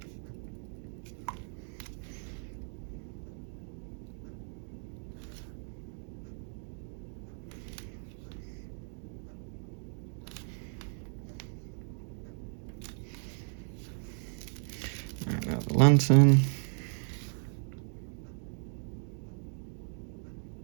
Now the lantern.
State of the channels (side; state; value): left; silent; 54 dB below the other